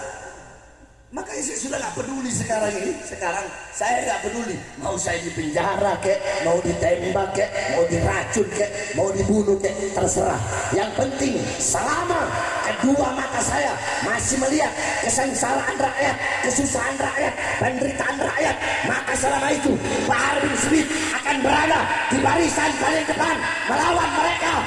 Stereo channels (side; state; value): both; identical; correlation 1.00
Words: Makanya saya sudah gak peduli sekarang ini. Sekarang saya gak peduli, mau saya di penjara kek, mau ditembak kek, mau diracun kek, mau dibunuh kek, terserah. Yang penting selama kedua mata saya masih melihat kesengsaraan rakyat, kesusahan rakyat, penderitaan rakyat, maka selama itu Pak Bahar bin Smith akan berada di barisan paling depan melawan mereka